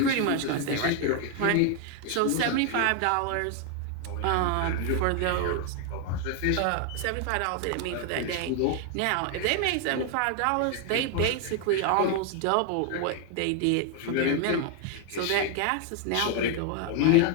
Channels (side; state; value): both; different; correlation 0.01